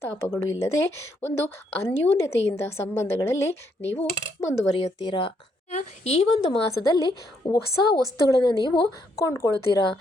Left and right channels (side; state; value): both; normal; correlation 0.74